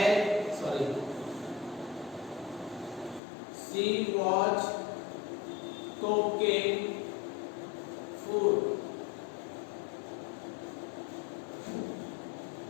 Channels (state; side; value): drops out; right; at 3.2 s